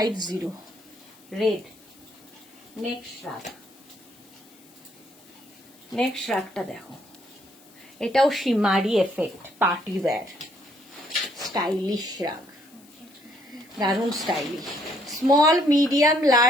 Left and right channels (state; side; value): noise; left; hiss, 26 dB below the sound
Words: Red. Next shrug, next শ্রাগটা দেখো, এটাও shimmery effect, party wear, stylish shrug, দারুণ স্টাইলিশ। স্মল, মিডিয়াম,